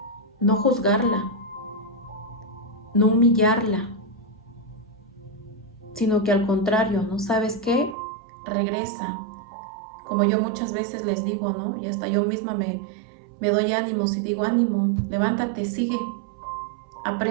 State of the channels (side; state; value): left; drops out; at 8.0 s